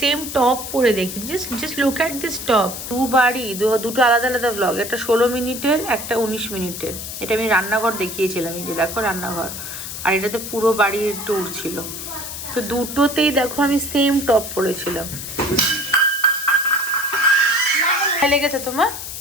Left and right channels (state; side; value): noise; left; hiss, 8 dB below the sound